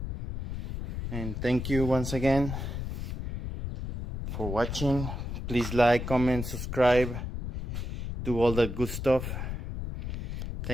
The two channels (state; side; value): noise; left; rumble, 5 dB below the sound